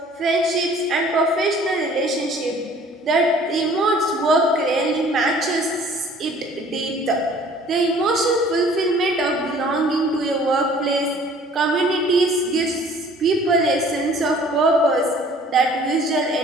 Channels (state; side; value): normal; both; correlation 0.53